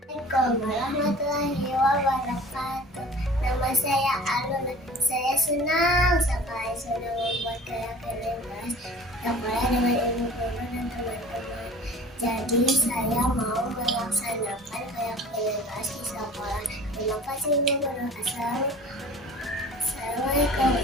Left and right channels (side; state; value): both; normal; correlation 0.44